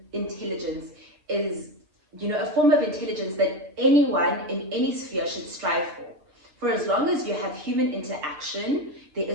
is, a form of intelligence that anyone in any sphere should strive for. For as long as you have human interaction, there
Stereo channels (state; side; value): late; left; 6.6 ms